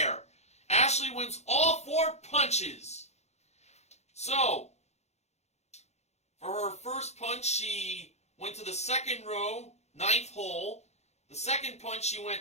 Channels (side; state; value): right; late; 0.32 ms